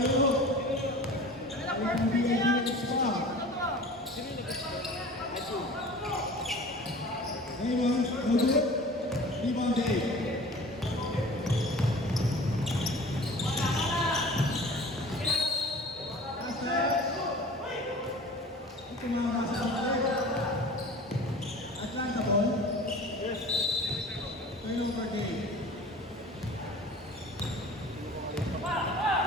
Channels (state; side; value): normal; both; correlation 0.41